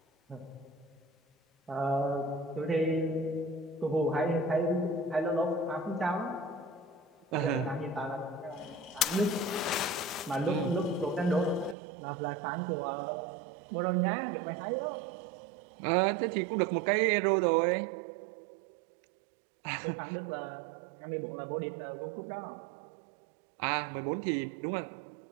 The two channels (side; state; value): left; drops out; at 11.8 s